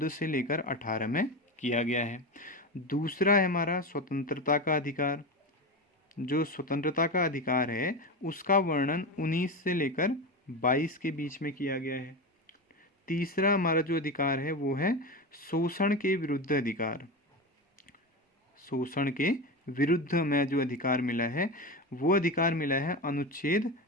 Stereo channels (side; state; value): both; normal; correlation 0.21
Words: से लेकर 18 में किया गया है। दूसरा है हमारा स्वतंत्रता का अधिकार। जो स्वतंत्रता का अधिकार है उसका वर्णन 19 से लेकर 22 के बीच में किया गया है। तीसरा हमारा जो अधिकार है वो है शोषण के विरुद्ध अधिकार। शोषण के विरुद्ध में जो अधिकार मिला है वो अधिकार मिला है अनुच्छेद